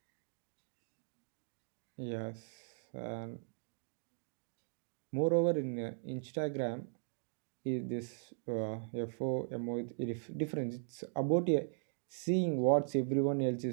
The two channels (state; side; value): silent; left; digital silence